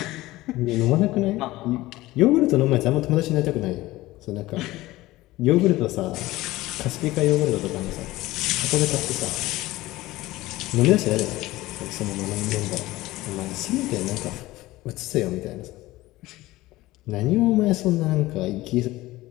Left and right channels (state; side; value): quieter; right; 18.0 dB